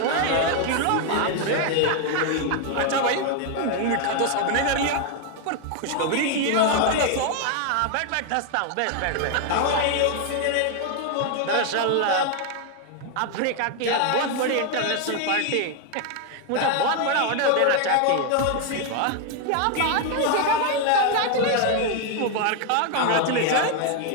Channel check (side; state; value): both; different; correlation 0.01